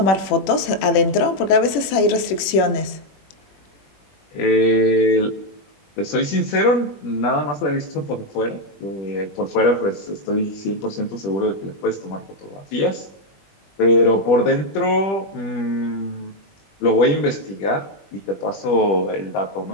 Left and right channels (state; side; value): late; right; 21 ms